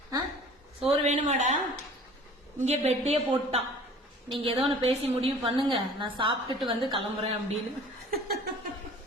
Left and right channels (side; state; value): both; normal; correlation 0.47